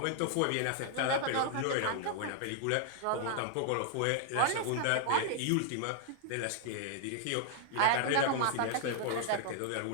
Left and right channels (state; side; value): different; both; correlation -0.01